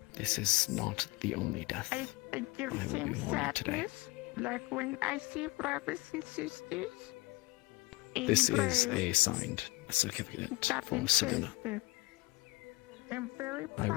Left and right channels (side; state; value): right; quieter; 22.9 dB